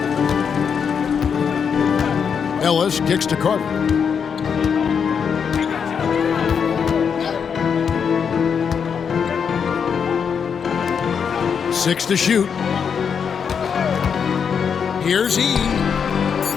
Ellis kicks to Carter. Six to shoot. Here's E.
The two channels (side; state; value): right; quieter; 6.8 dB